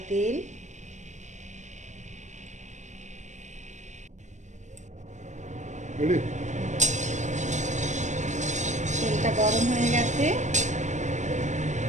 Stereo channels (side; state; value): left; late; 0.34 ms